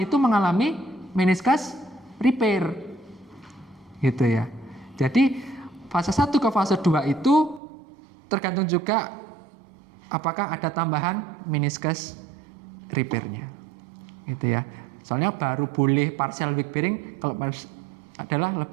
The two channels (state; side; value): drops out; left; at 7.6 s